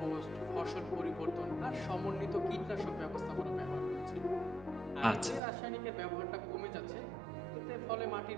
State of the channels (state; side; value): drops out; left; at 5.4 s